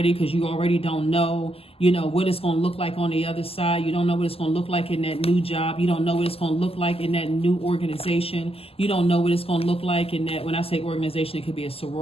because you already don't know, what it's going to look like on the other side. You don't know what it's going to look like in that new job. You don't know what it's going to look like in that new organization. You don't know what it's going to look like in that, when I say organization, it could be a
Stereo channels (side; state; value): right; late; 0.28 ms